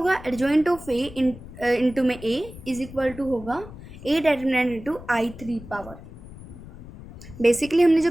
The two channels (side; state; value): left; noise; rumble, 16 dB below the sound